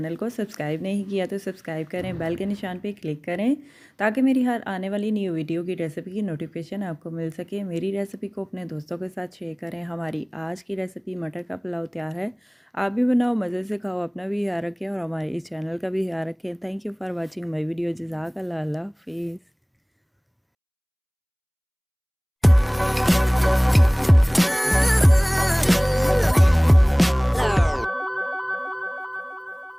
को सब्सक्राइब नहीं किया तो सब्सक्राइब करें, बेल के निशान पे क्लिक करें ताकि मेरी हर आने वाली न्यू वीडियो की रेसिपी की नोटिफिकेशन आपको मिल सके। मेरी रेसिपी को अपने दोस्तों के साथ शेयर करें। हमारी आज की रेसिपी मटर का पुलाव तैयार है। आप भी बनाओ, मज़े से खाओ, अपना भी ख्याल रखें और हमारे इस चैनल का भी ख्याल रखें। Thank you for watching my video. जज़ाकल्लाह, अल्लाह हाफिज़।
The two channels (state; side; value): identical; both; correlation 1.00